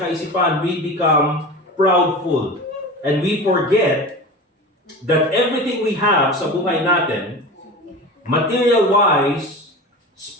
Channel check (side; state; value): both; normal; correlation 0.31